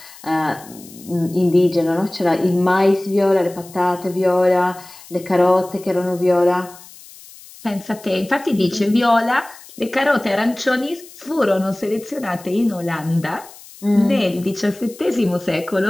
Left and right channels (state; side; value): noise; left; hiss, 20 dB below the sound